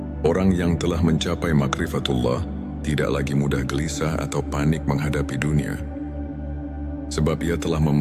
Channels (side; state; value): both; identical; correlation 1.00